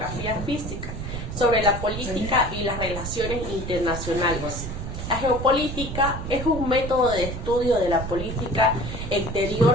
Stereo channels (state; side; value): noise; right; rumble, 6 dB below the sound